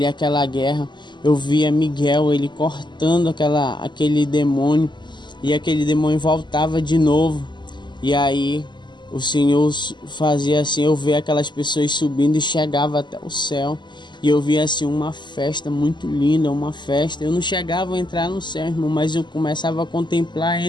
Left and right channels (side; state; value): right; late; 0.22 ms